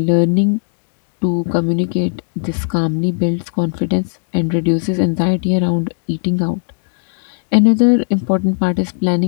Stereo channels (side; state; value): right; silent; digital silence